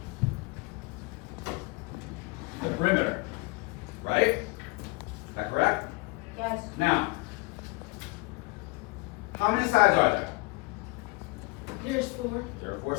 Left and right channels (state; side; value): quieter; right; 26.0 dB